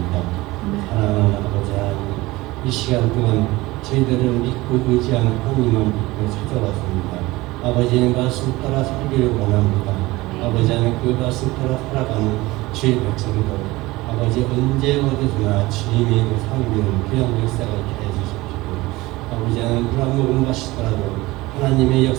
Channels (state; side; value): quieter; left; 20.1 dB